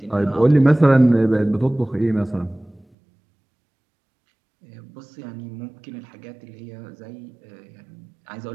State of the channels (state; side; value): drops out; left; at 2.9 s